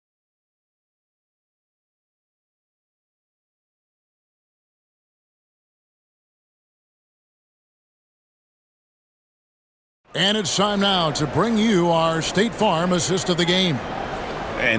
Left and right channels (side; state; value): both; identical; correlation 1.00